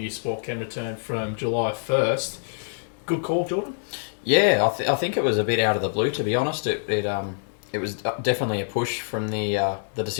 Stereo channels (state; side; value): silent; right; digital silence